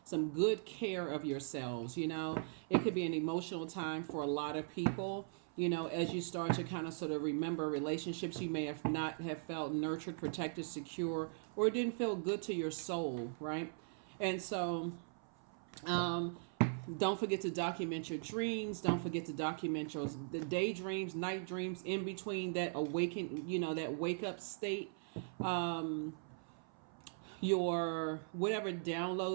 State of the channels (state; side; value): silent; left; 51 dB below the other